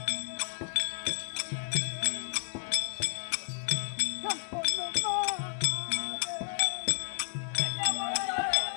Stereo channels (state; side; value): silent; right; digital silence